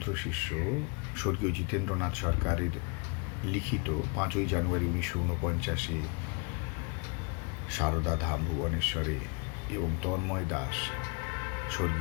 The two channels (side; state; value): right; quieter; 33.4 dB